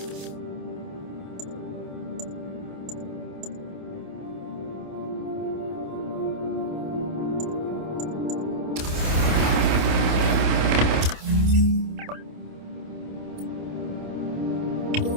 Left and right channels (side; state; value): left; late; 28 ms